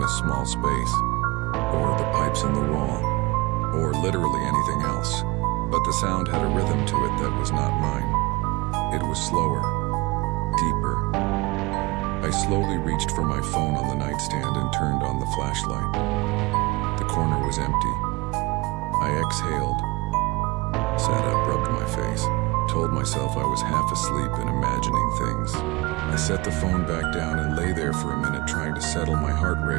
a small space, or the pipes in the wall, or literally anything else. But the sound had a rhythm to it that was not mine. It was slower, deeper. I slowly reached for my phone on the nightstand and turned on the flashlight. The corner was empty. I exhaled, sat up, rubbed my face, told myself I was half asleep and imagining things. I set the phone back down and lay there for a minute trying to settle my heart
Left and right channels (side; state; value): left; quieter; 23.7 dB